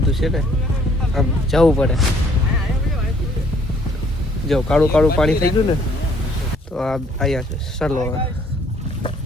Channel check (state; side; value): normal; both; correlation 0.62